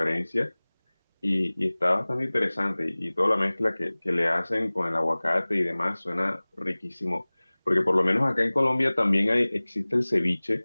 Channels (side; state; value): both; inverted; correlation -1.00